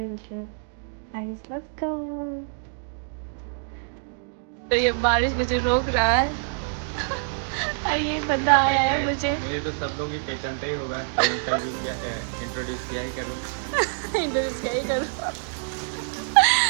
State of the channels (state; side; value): silent; left; digital silence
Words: हूँ। Guys, let's go. तो ये बारिश मुझे रोक रहा है और ये बंदा आया है मुझे तो सब लोग ही पहचानते ही होगा। इंट्रोड्यूस किया ही करूँ